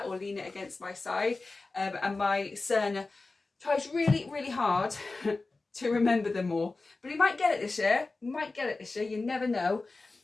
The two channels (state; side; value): quieter; right; 3.5 dB